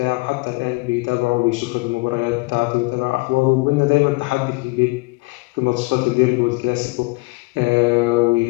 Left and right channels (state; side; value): quieter; right; 26.0 dB